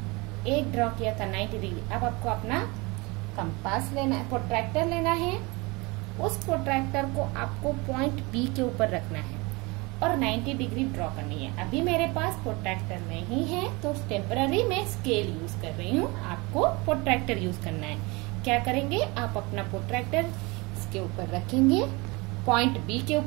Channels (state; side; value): quieter; left; 25.7 dB